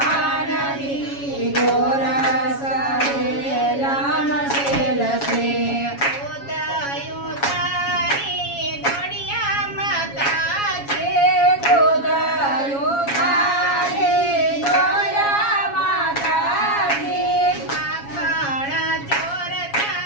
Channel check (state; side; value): late; right; 7.2 ms